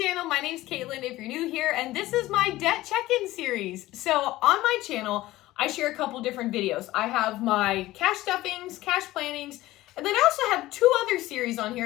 My name's Caitlin if you're new here, and this is my debt check-in series. So on my channel, I share a couple different videos. I have my cash stuffings, cash plannings, and then I also have two other series on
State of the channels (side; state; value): right; quieter; 17.0 dB